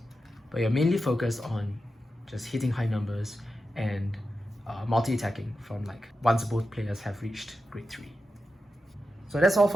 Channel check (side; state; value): both; normal; correlation 0.90